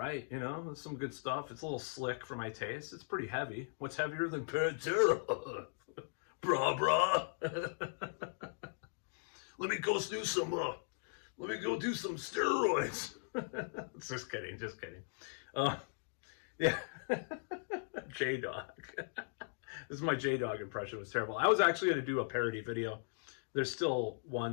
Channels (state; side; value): silent; right; digital silence